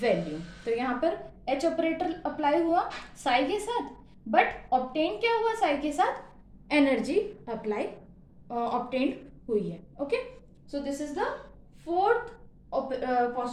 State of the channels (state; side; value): identical; both; correlation 1.00